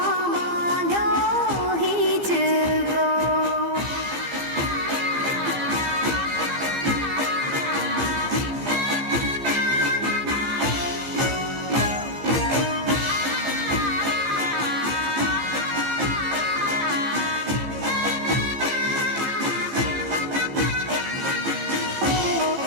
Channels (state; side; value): late; left; 15 ms